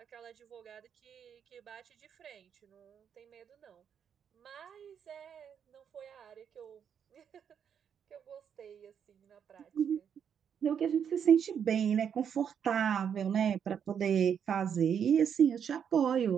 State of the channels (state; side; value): quieter; left; 7.9 dB